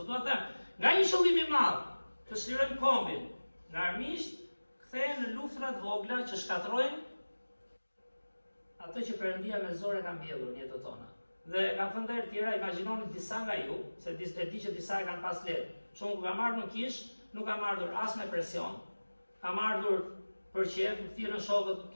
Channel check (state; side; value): inverted; both; correlation -1.00